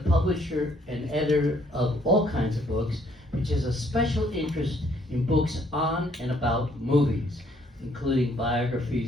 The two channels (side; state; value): both; normal; correlation 0.65